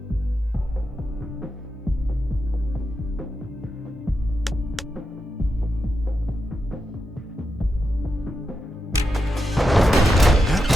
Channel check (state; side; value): normal; both; correlation 0.87